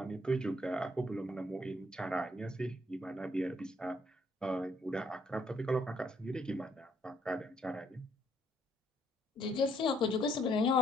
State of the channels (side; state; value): both; normal; correlation 0.68